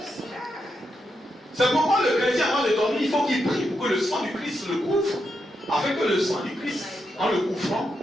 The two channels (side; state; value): both; normal; correlation 0.84